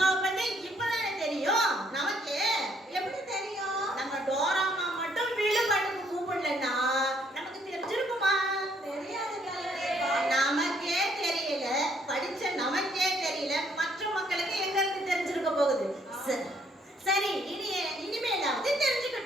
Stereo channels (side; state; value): both; normal; correlation 0.67